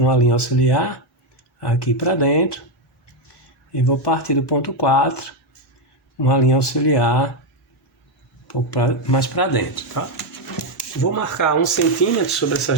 linha auxiliar aqui para dentro. E vou partir do ponto 4, uma linha auxiliar um pouco mais para dentro, tá? Vou marcar 1 centímetro sobre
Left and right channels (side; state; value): both; normal; correlation 0.05